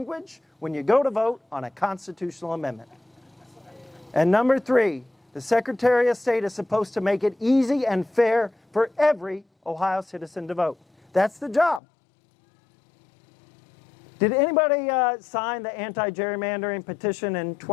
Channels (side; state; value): right; drops out; at 11.8 s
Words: when you go to vote on a constitutional amendment. And number 3, the Secretary of State is supposed to make it easy and fair for every Ohio citizen to vote. That's the job. Did anybody sign the anti-gerrymandering petition in